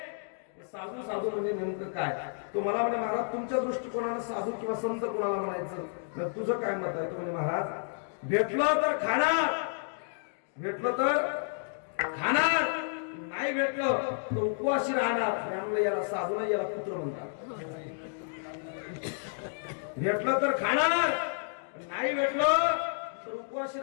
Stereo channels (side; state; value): right; silent; digital silence